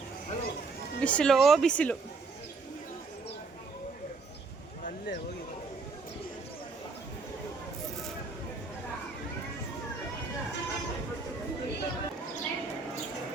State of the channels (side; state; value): left; quieter; 4.2 dB